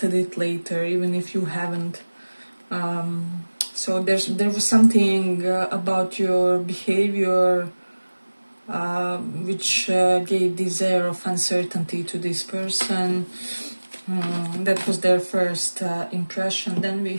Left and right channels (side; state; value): both; inverted; correlation -1.00